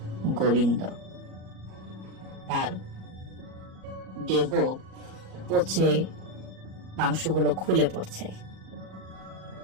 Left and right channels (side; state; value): left; late; 37 ms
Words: গোবিন্দ। তার দেহ পচে মাংসগুলো খুলে পড়ছে।